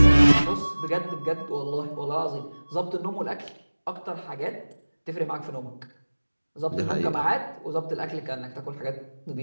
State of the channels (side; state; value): both; inverted; correlation -1.00